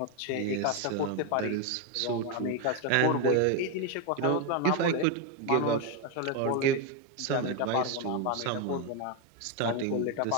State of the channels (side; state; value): both; different; correlation 0.02